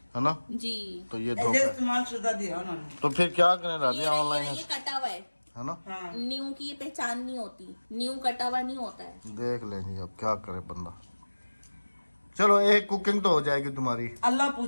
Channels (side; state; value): both; inverted; correlation -1.00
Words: ना जी। तो ये ऐसे धोखा। इस्तेमाल शुदा दिया उन्होंने। तो फिर क्या करें ये राबिया ऑनलाइन ये कटा हुआ है ना? हाँ। न्यू की ये पहचान नहीं होती, न्यू कटा हुआ नहीं होता है। देख लेंगे अब क्या करे बंदा। चलो 1 कुकिंग तो हो जाएगी तुम्हारी। अल्लाह